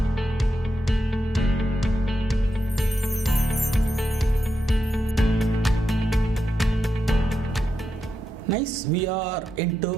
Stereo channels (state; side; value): normal; both; correlation 0.86